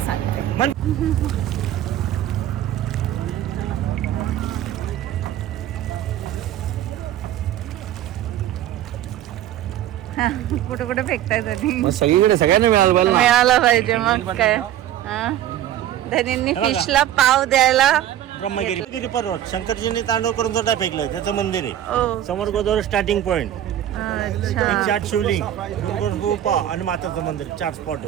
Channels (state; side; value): quieter; left; 11.9 dB